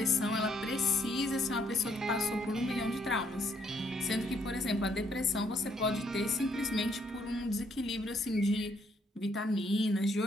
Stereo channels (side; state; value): both; normal; correlation 0.70